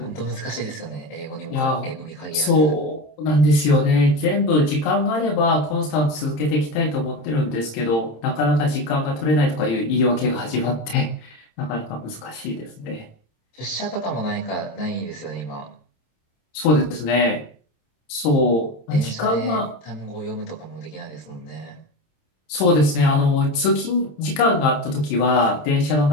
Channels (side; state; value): right; late; 27 ms